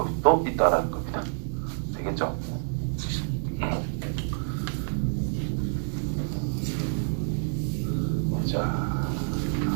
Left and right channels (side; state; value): left; silent; digital silence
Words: 또 있다라는 겁니다. 되겠죠? 자,